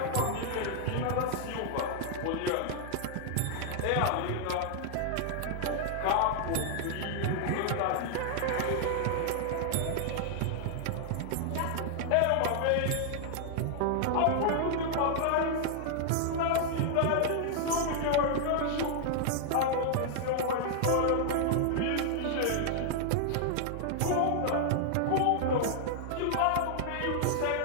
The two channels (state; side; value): different; both; correlation 0.00